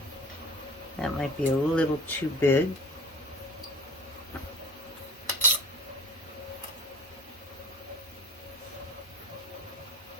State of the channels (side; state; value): both; normal; correlation 0.42